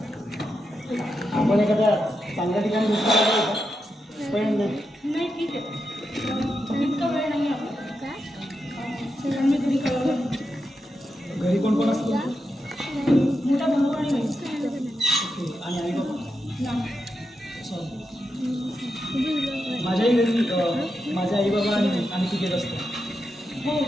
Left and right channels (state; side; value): normal; both; correlation 0.87